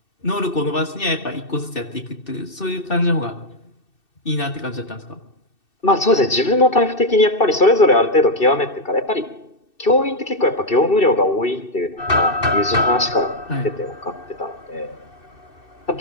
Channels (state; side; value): late; right; 2.6 ms